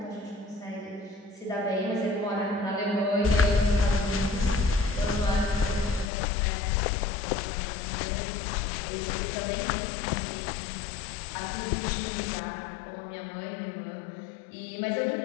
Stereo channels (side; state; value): right; drops out; at 6.1 s